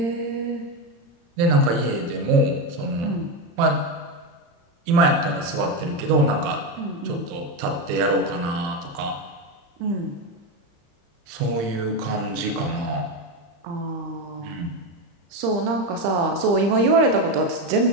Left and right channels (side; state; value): left; late; 35 ms